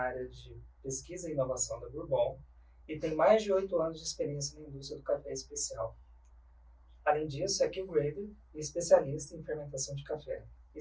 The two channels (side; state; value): both; identical; correlation 1.00